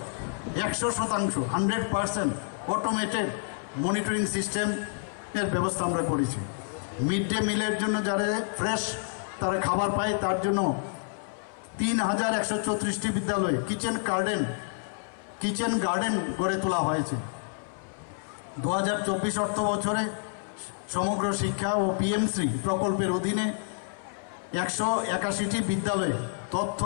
100% অটোমেটেড মনিটরিং সিস্টেমের ব্যবস্থা আমরা করেছি। মিড ডে মিলের জন্য যারা ফ্রেশ তারা খাবার পায় তার জন্য 3134টি বিদ্যালয়ে কিচেন গার্ডেন গড়ে তোলা হয়েছে। 2024 অর্থ বছরে সমগ্র শিক্ষা ও পিএমশ্রী প্রকল্পের অধীনে 181টি বিদ্যালয়ে তথ্য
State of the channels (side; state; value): right; silent; 59 dB below the other